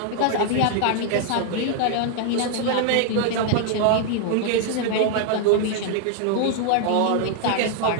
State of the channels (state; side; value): different; both; correlation 0.00